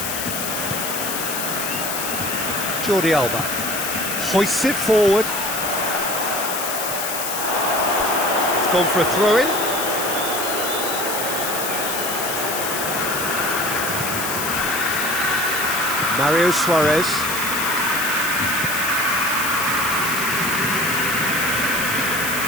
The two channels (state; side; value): noise; left; hiss, 3 dB below the sound